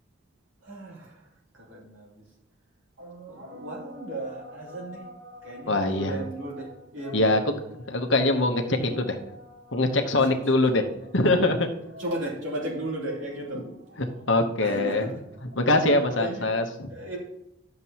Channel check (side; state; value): both; normal; correlation 0.08